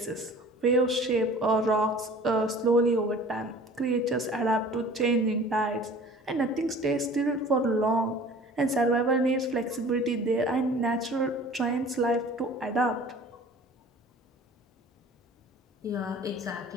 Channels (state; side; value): normal; both; correlation 0.46